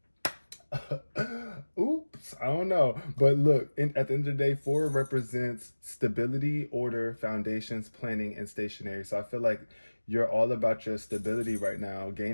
Oops, I don't know. But look, at the end of the day, 4 represents stability, order, foundations, planning, and stationary. So I feel like you're all about your stability right now,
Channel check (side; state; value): both; inverted; correlation -1.00